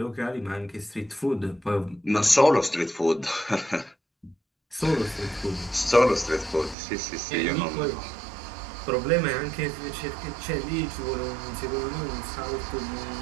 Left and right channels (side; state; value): left; drops out; at 6.8 s